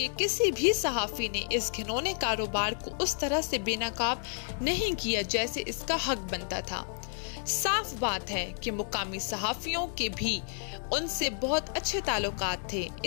किसी भी सहाफी ने इस घिनौने कारोबार को उस तरह से बेनकाब नहीं किया जैसे इसका हक बनता था। साफ बात है कि मुकामी सहाफियों के भी उनसे बहुत अच्छे ताल्लुकात थे,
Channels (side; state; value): right; silent; 57 dB below the other